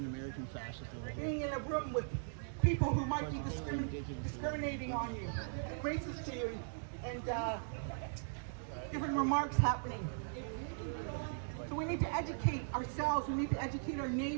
American fascist over here. Being in a room with people who might be discriminating on you, and racist to you, and different remarks happening. So we need to educate ourselves, we need to educate our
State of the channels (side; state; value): left; silent; digital silence